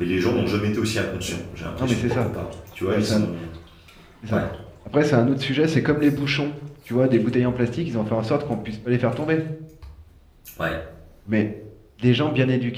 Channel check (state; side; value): identical; both; correlation 1.00